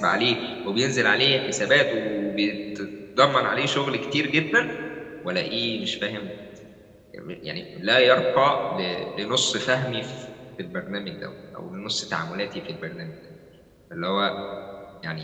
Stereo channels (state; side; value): identical; both; correlation 1.00